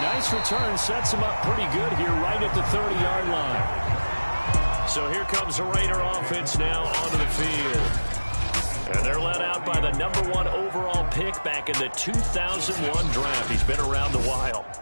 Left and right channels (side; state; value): both; inverted; correlation -1.00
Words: nice return sets him up pretty good here right at the 30-yard line. So here comes the Raider offense now onto the field. And they're led out by the #1 overall pick back in the 2001 draft. He's been around a while.